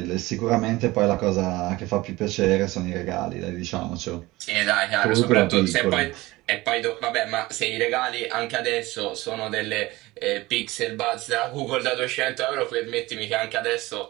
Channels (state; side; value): quieter; left; 19.7 dB